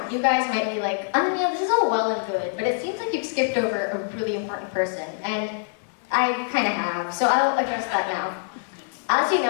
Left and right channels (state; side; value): silent; right; 62 dB below the other